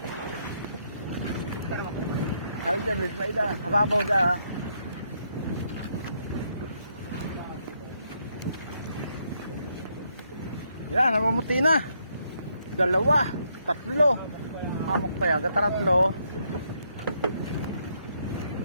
Saan dyan, Lloyd, Mai, da? Hababaw da, ha? Yan, namumuti na. Dalawa, tatlo. Hamok pa yan, kataratlo.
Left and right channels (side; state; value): both; inverted; correlation -0.75